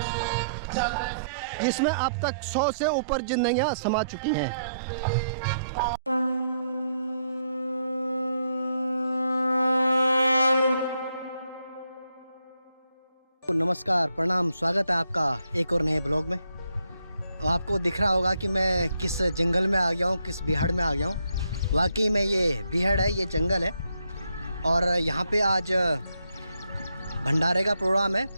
जिसमें अब तक 100 से ऊपर जिंदगियां समा चुकी हैं। नमस्कार, प्रणाम, स्वागत है आपका एक और नए ब्लॉग में। आपको दिख रहा होगा कि मैं किस जंगल में आ गया हूँ, किस बिहाड़ में आ गया हूँ। वाकई में ये बिहाड़ है, ये जंगल है और यहाँ पे आज भंडारे का प्रोग्राम है।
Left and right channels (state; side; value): inverted; both; correlation -0.76